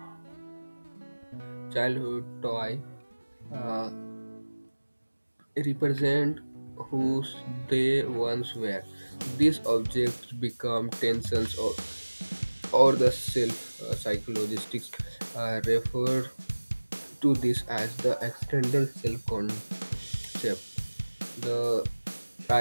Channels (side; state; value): both; inverted; correlation -1.00